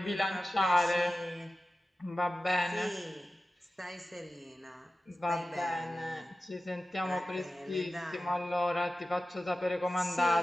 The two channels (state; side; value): normal; both; correlation 0.94